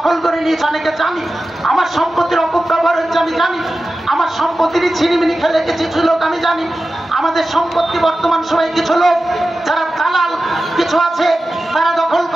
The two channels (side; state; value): both; normal; correlation 0.94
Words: করে নিয়েছে অনেকে জানি, আমার সম্পত্তির অপব্যবহার হচ্ছে আমি জানি, আমার সম্পত্তিরই ছিনিমিনি খেলে কিছু লোক আমি জানি। আমাদের সম্পত্তি বর্তমান সময়ে কিছু লোক যারা দালাল কিছু আছে তারা দখল